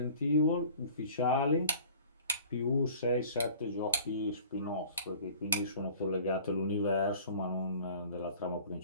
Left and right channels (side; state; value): both; inverted; correlation -0.46